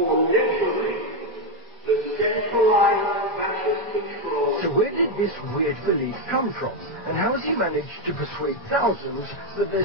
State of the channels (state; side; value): normal; both; correlation 0.05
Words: literally the centralized fascist control. So where did this weird belief come from? And how has he managed to persuade thousands that